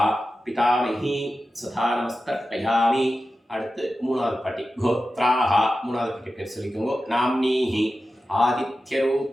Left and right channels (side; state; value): both; normal; correlation 0.93